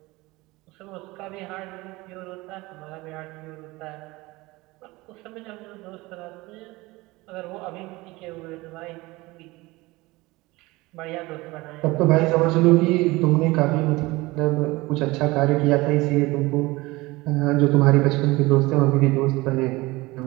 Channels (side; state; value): left; quieter; 21.4 dB